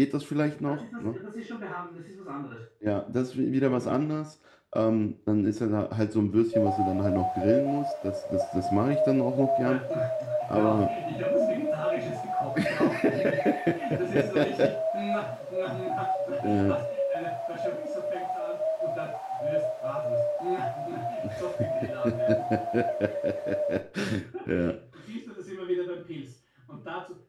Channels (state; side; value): identical; both; correlation 1.00